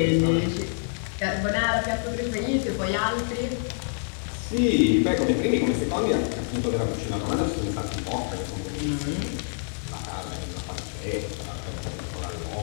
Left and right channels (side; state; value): right; silent; digital silence